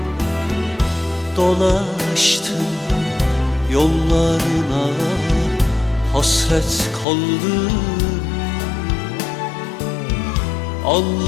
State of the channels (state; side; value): drops out; right; at 7.1 s